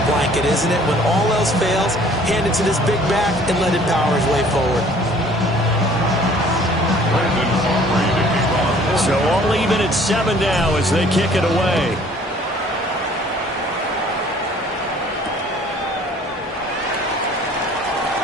blanket, isn't it? When all else fails, hand it to this big back and let him power his way forward. So all even at 7 now as they kick it away.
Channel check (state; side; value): normal; both; correlation 0.54